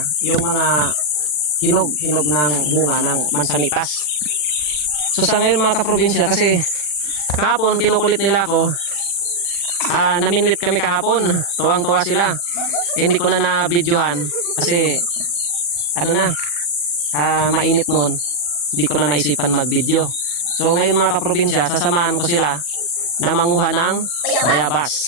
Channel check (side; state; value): right; late; 40 ms